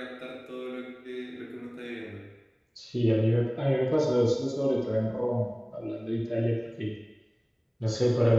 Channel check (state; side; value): identical; both; correlation 1.00